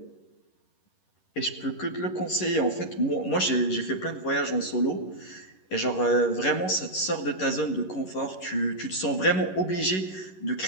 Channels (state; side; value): late; right; 11 ms